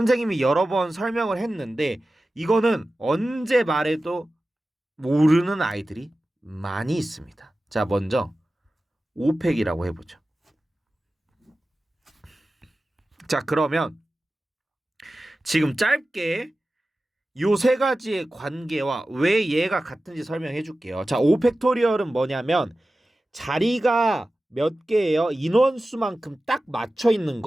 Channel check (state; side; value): normal; both; correlation 0.95